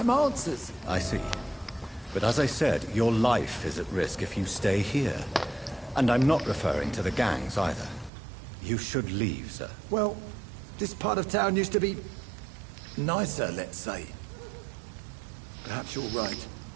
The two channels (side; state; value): left; drops out; at 8.1 s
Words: answers. I see. But as I said, your life is at risk if you stay here. And I'm not referring to the gangs either. You should leave, sir. Well, this part of town used to be nicer, let's say. Perhaps you're right.